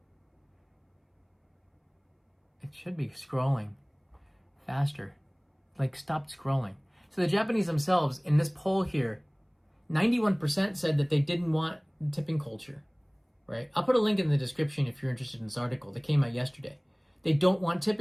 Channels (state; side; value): identical; both; correlation 1.00